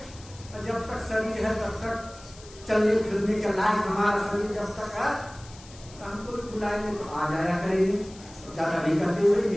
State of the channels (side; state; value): left; noise; hiss, 20 dB below the sound